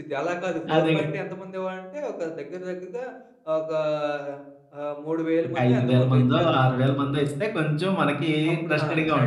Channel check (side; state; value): both; identical; correlation 1.00